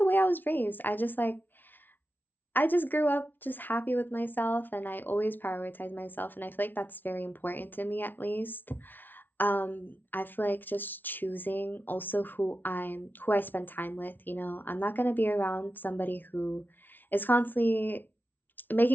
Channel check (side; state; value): right; late; 0.089 ms